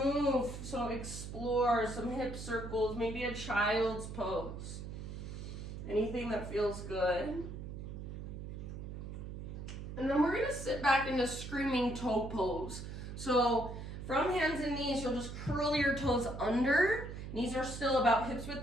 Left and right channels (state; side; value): noise; right; hum, 8 dB below the sound